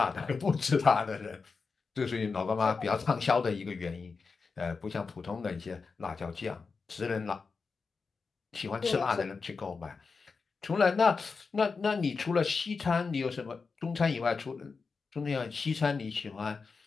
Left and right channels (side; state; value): right; quieter; 4.8 dB